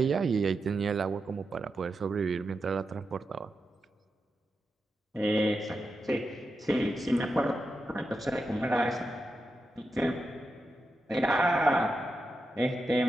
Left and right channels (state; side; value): normal; both; correlation 0.88